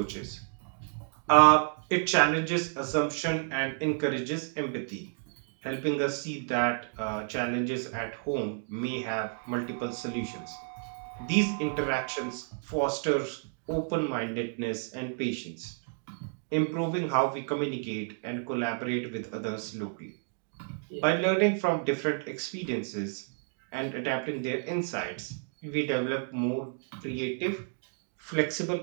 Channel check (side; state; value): left; silent; 57 dB below the other